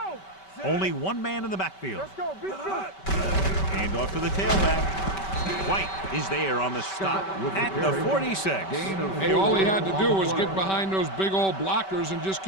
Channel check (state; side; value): late; right; 5.2 ms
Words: Only 1 man in the backfield. Let's go. Be good. Hand off to the tailback. White is there on the stop at the 46. Hey, all he had to do was get behind those big old blockers and just